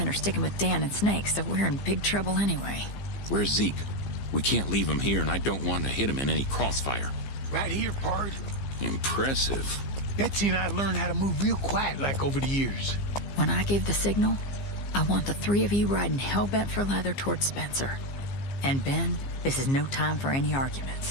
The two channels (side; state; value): right; late; 15 ms